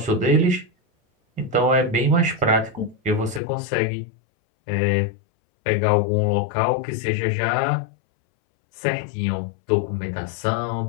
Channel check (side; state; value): right; drops out; at 3.4 s